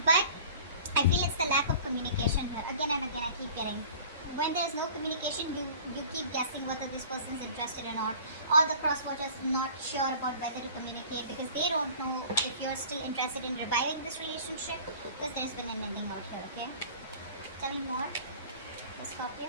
But I feel it's the lack of communication here. Again and again, I keep getting. When there's no communication, you keep guessing whether this person is interested or not. Or the crosswatchers not sure about whether to communicate because they don't know if you're still interested in reviving this relationship because there's been an ending out here, okay? Tell me more, Scorpio.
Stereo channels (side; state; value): both; inverted; correlation -0.44